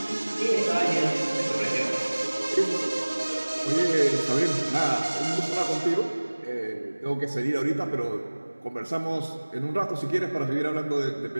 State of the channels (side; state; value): both; inverted; correlation -1.00